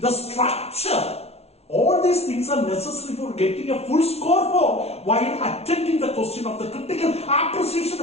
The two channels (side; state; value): right; late; 0.30 ms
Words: the structure, all these things are necessary for getting a full score for while attending the question of the critical appreciation